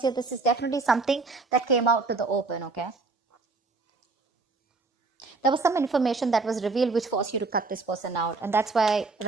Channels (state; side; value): quieter; left; 3.9 dB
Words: here, this is definitely something that came out to the open, okay? There was some information that was revealed which forced you to cut this person out. And that's why